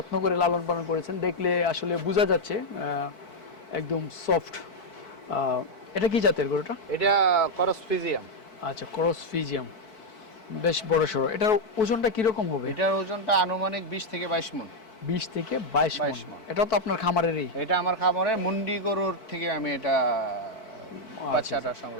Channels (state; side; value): late; right; 4.6 ms